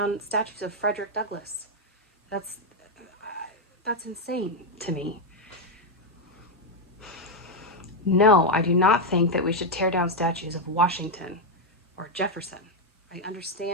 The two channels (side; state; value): both; normal; correlation 0.03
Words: statues of Frederick Douglass. That's insane to me. No, I do not think that we should tear down statues of Washington or Jefferson. I